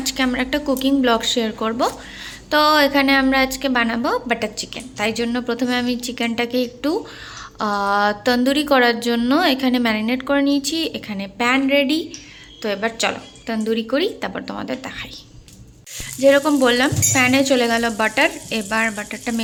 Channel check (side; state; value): both; identical; correlation 1.00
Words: আমরা একটা কুকিং ব্লগ শেয়ার করব। তো এখানে আমরা আজকে বানাবো বাটার চিকেন। তাই জন্য প্রথমে আমি চিকেনটাকে একটু তন্দুরি করার জন্য এখানে ম্যারিনেট করে নিয়েছি। এখানে প্যান রেডি। তো এবার চলো তন্দুরি করি, তারপর তোমাদের দেখাই। যেরকম বললাম, প্যানে চলে গেল বাটার। এবার বাটারটা